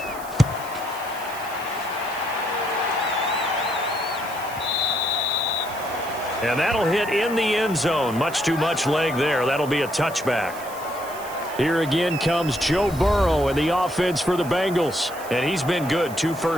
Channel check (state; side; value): noise; right; hiss, 16 dB below the sound